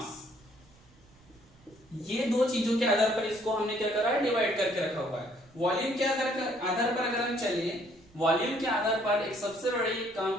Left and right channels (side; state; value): right; noise; rumble, 28 dB below the sound